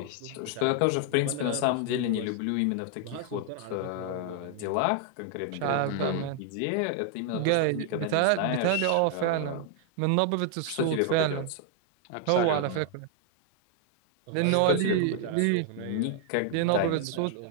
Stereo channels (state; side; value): different; both; correlation 0.00